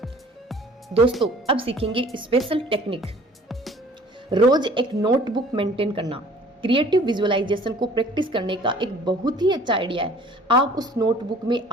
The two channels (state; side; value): normal; both; correlation 0.51